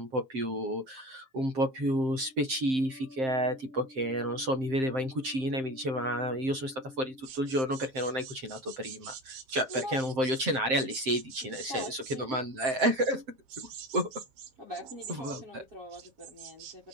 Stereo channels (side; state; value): left; late; 7.6 ms